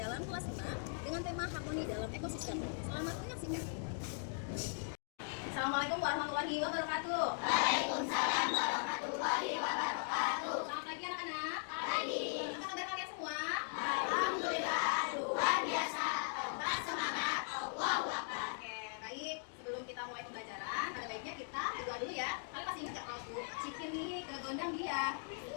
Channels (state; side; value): silent; right; digital silence